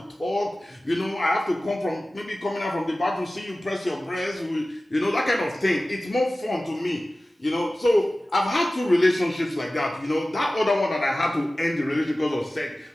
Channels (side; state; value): both; normal; correlation 0.96